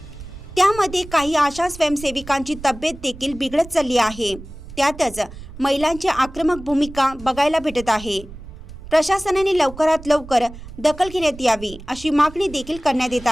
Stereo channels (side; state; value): right; noise; rumble, 15 dB below the sound